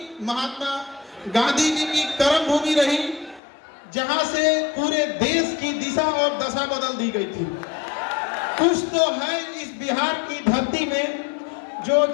महात्मा गांधी जी की कर्म भूमि रही, जहां से पूरे देश की दिशा और दशा बदल दी गई थी। कुछ तो है इस बिहार की धरती में जो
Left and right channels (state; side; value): drops out; right; at 3.4 s